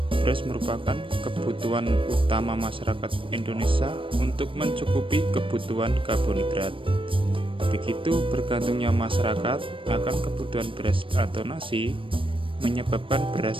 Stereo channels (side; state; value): left; late; 0.25 ms